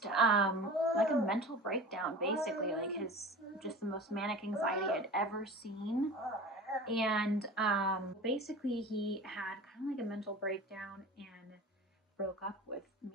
like a mental breakdown, basically, like his, just the most manic anxiety I'd ever seen. And basically he had kind of like a mental breakdown and broke up with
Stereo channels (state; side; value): normal; both; correlation 0.37